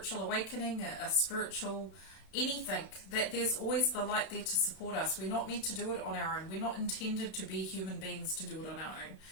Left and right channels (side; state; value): right; late; 32 ms